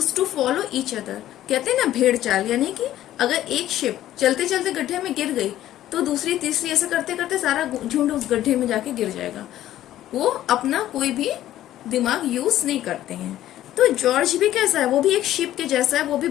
to follow each other. कहते हैं ना भेड़ चाल, यानी कि अगर एक शिप चलते चलते गड्ढे में गिर गई तो दूसरी तीसरी ऐसे करते करते सारा झुंड उस गड्ढे में जाके गिर जाएगा. वो अपना कोई भी दिमाग यूज नहीं करते हैं. तो जॉर्ज भी कैसा है, वो भी एक शिप के जैसा है, वो भी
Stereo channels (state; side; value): quieter; right; 13.2 dB